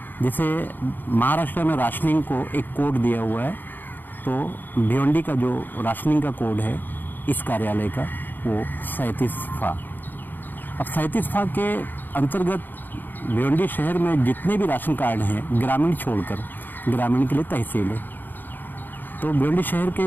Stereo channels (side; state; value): right; late; 0.090 ms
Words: जिसे महाराष्ट्र में राशनिंग को एक कोड दिया हुआ है, तो भिवंडी का जो राशनिंग का कोड है इस कार्यालय का वो 37फा। अब 37फा के अंतर्गत भिवंडी शहर में जितने भी राशन कार्ड हैं, ग्रामीण छोड़कर, ग्रामीण के लिए तहसील है, तो भिवंडी शहर